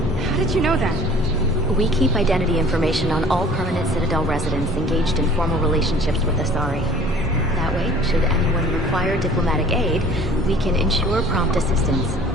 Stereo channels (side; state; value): both; normal; correlation 0.49